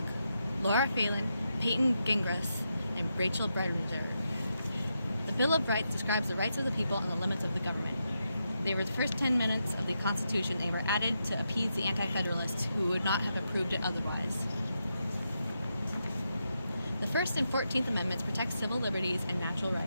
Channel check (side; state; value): both; inverted; correlation -0.85